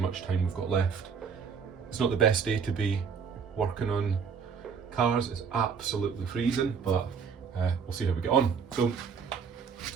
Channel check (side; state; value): left; quieter; 6.3 dB